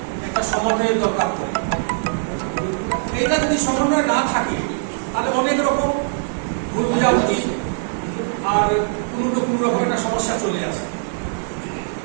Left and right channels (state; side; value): silent; left; digital silence